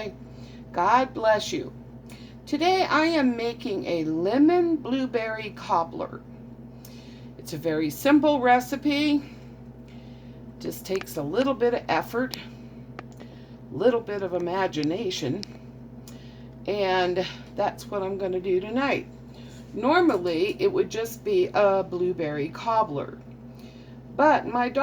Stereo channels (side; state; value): both; identical; correlation 1.00